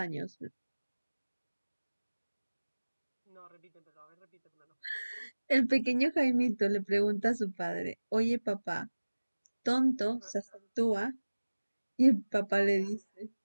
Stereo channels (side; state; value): both; inverted; correlation -1.00